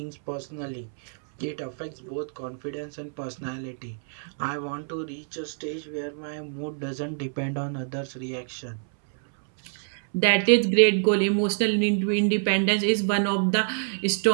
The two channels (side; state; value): left; silent; 61 dB below the other